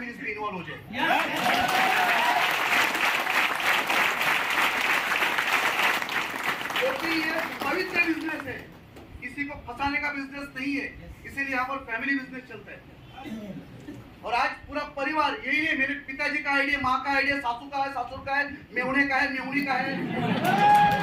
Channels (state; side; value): identical; both; correlation 1.00